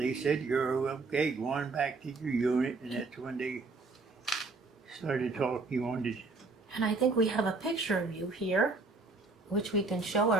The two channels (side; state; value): left; quieter; 3.7 dB